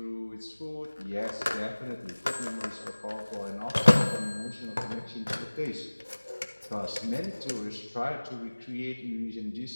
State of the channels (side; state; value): both; inverted; correlation -1.00